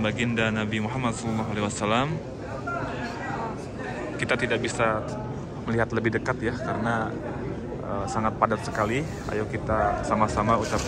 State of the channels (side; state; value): both; identical; correlation 1.00